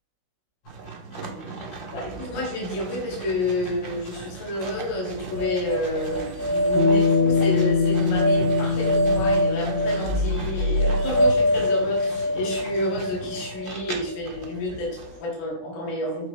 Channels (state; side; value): late; right; 16 ms